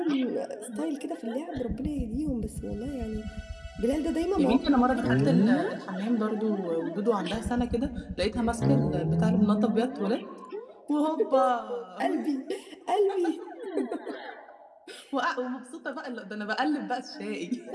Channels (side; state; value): both; identical; correlation 1.00